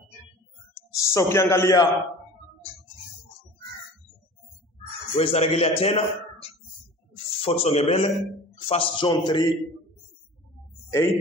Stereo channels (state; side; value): normal; both; correlation 0.41